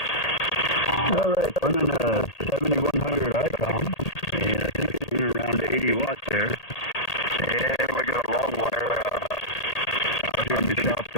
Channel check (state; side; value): late; right; 1.8 ms